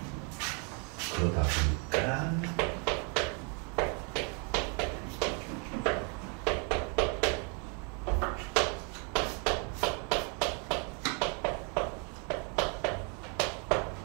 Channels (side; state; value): left; quieter; 36.4 dB